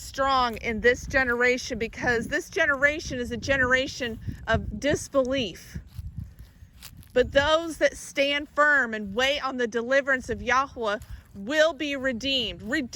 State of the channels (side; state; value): both; identical; correlation 1.00